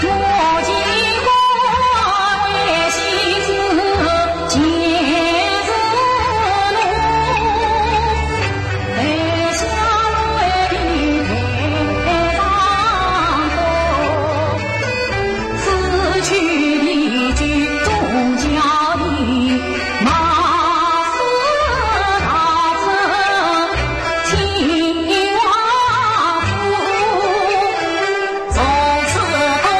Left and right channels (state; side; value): identical; both; correlation 1.00